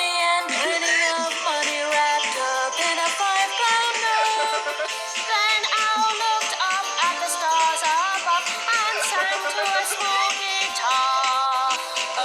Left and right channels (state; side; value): identical; both; correlation 1.00